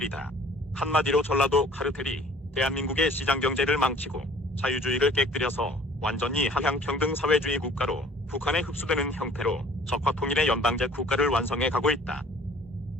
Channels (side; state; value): both; normal; correlation 0.52